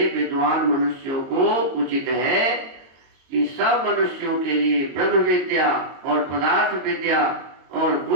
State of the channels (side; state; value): left; late; 22 ms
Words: विद्वान मनुष्यों को उचित है कि सब मनुष्यों के लिए ब्रह्म विद्या और पदार्थ विद्या और